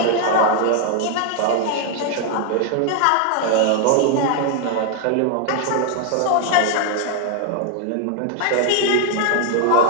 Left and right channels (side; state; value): both; different; correlation 0.00